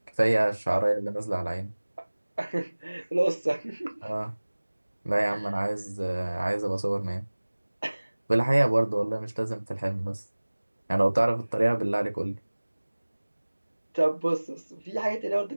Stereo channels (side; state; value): both; inverted; correlation -1.00